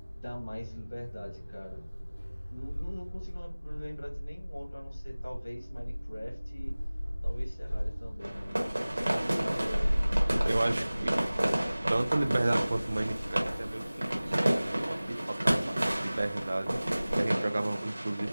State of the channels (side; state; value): both; inverted; correlation -0.99